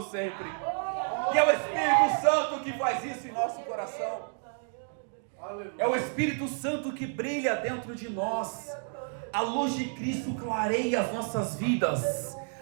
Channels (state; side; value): silent; left; 58 dB below the other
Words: sempre. E é o Espírito Santo que faz isso em nosso coração. É o Espírito Santo que brilha dentro de nós. A luz de Cristo clareia as nossas vidas.